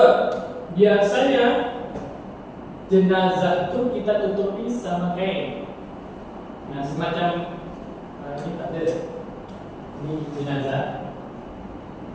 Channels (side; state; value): both; identical; correlation 1.00